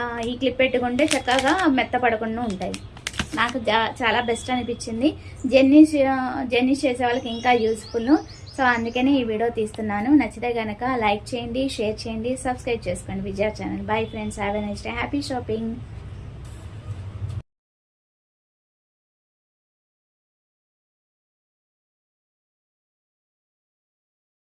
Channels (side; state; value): both; identical; correlation 1.00